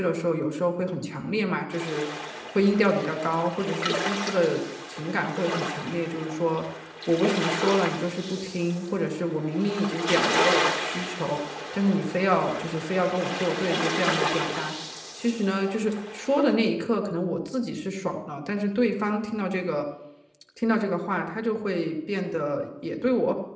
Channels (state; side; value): identical; both; correlation 1.00